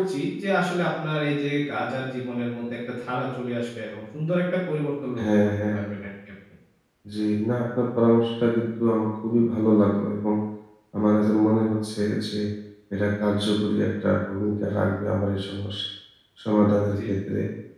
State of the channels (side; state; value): both; identical; correlation 1.00